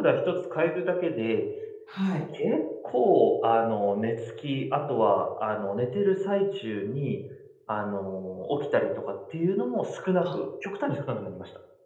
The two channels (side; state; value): both; identical; correlation 1.00